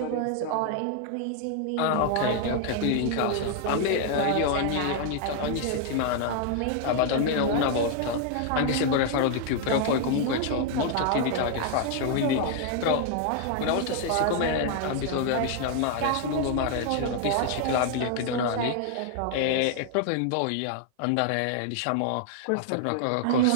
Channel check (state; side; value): different; both; correlation 0.00